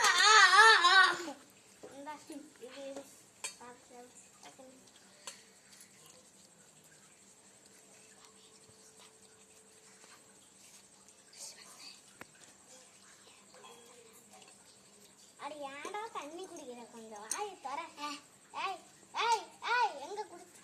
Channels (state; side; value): identical; both; correlation 1.00